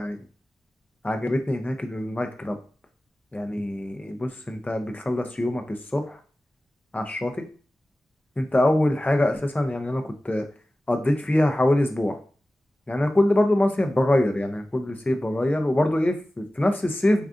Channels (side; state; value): both; normal; correlation 0.96